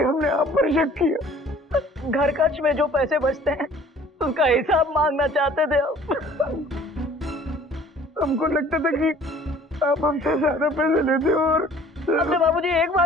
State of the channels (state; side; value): normal; both; correlation 0.52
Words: हमने आप पर शक किया। घर खर्च में जो पैसे बचते हैं उसका हिसाब मांगना चाहते थे आप। हमको लगता था कि आप हमसे ज्यादा पैसे लेते हो और हमने बाबूजी एक